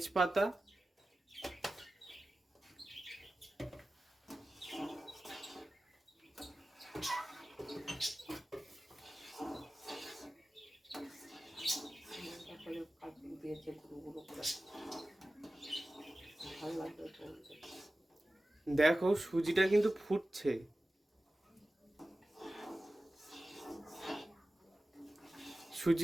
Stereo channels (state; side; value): normal; both; correlation 0.95